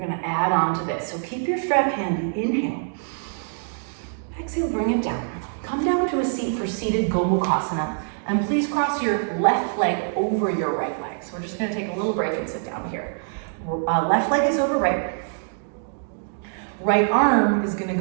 add on to this. So keep your strap handy, inhale. Exhale, bring it down. Come down to a seat for seated Gomukhasana. And please cross your left leg over your right leg. So we're just gonna take a little break and sit down here. Left leg is over right. Right arm is gonna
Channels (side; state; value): left; silent; digital silence